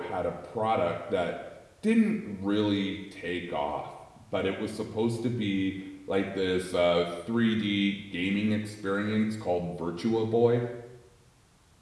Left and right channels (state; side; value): identical; both; correlation 1.00